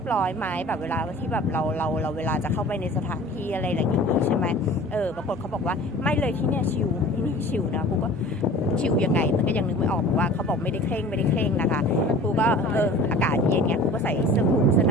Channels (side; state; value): both; normal; correlation 0.43